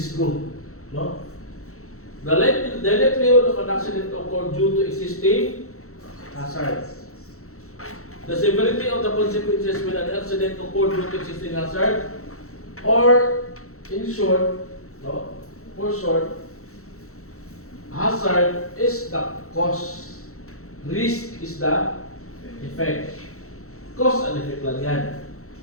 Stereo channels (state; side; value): late; right; 0.64 ms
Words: group, no? The likelihood of an accident to occur due to existing hazards. The severity of the consequences when an accident occurred due to existing hazard, or in short, no? For short, hazard is the cause, risk is the effect. Cause and effect lang yan.